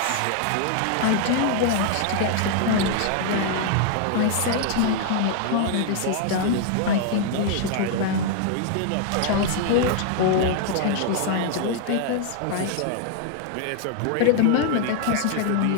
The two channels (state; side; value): different; both; correlation 0.00